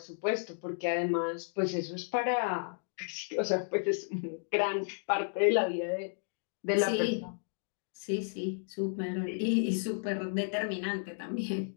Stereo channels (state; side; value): silent; right; digital silence